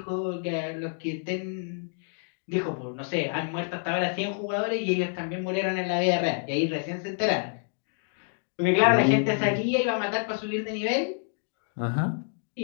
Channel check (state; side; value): silent; right; 59 dB below the other